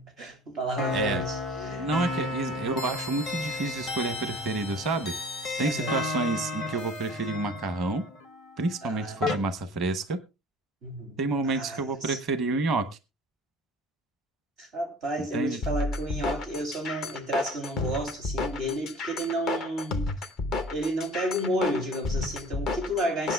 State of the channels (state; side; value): normal; both; correlation 0.46